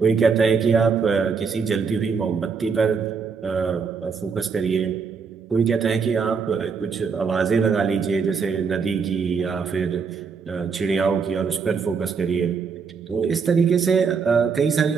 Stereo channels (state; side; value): quieter; left; 5.6 dB